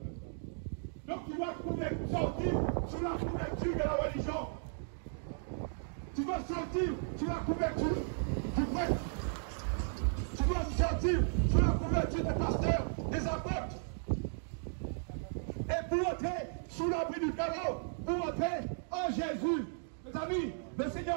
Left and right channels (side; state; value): left; silent; digital silence